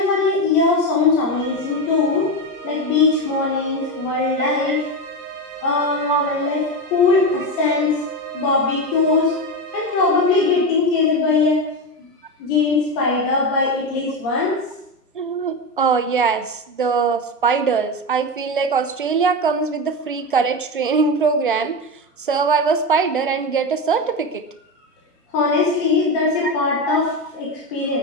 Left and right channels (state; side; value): normal; both; correlation 0.16